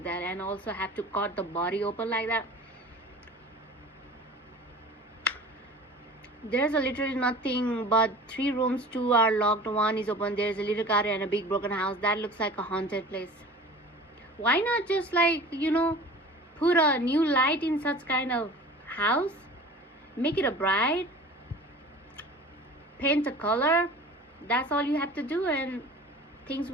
that, and also have to cut the body open like that. There's literally nothing but 3 rooms, 2 are locked, 1 is open. There's a little car and a big broken house. That looks like a haunted place. Why not just put a new light in such kind of house? Make it a bright. Paint a color. That's all you have to do, and things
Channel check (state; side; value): normal; both; correlation 0.41